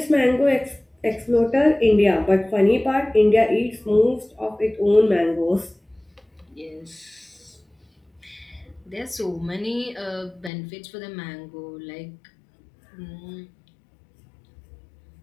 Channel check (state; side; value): drops out; right; at 10.5 s